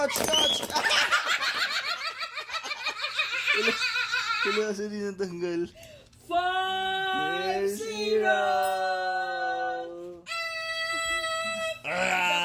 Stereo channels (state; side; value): identical; both; correlation 1.00